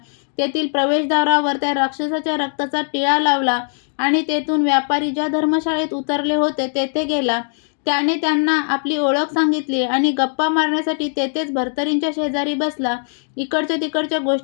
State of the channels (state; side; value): silent; right; 58 dB below the other